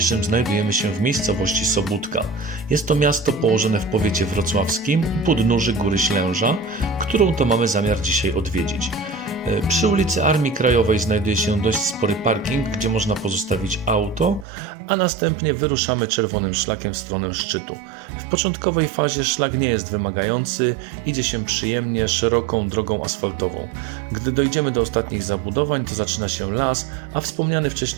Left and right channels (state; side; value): drops out; left; at 14.5 s